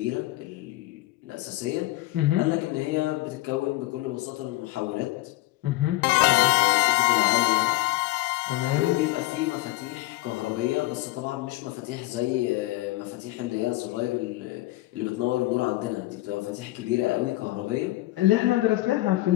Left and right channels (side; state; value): right; quieter; 18.5 dB